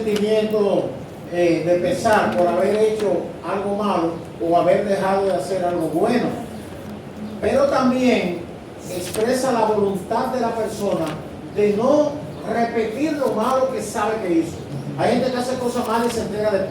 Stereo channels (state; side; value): identical; both; correlation 1.00